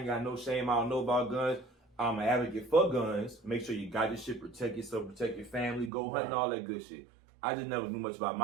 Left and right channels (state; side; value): drops out; left; at 5.9 s